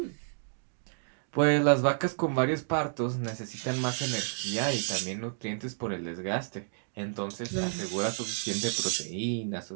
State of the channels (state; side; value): silent; left; digital silence